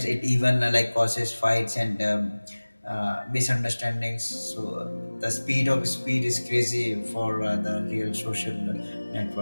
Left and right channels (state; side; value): inverted; both; correlation -1.00